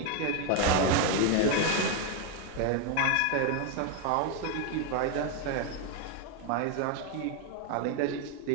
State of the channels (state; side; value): different; both; correlation 0.01